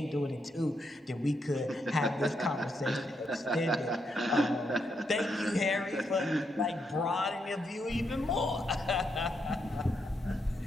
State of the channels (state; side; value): normal; both; correlation 0.80